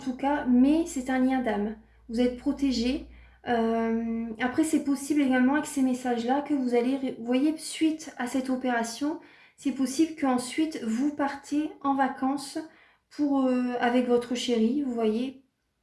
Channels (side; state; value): both; identical; correlation 1.00